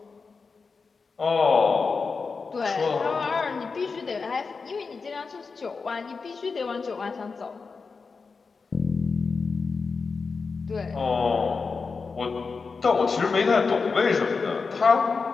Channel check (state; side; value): quieter; right; 4.7 dB